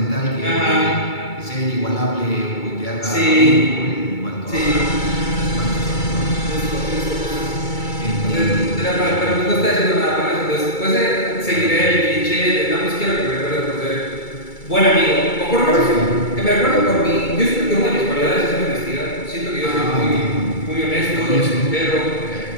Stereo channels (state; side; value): late; right; 2.3 ms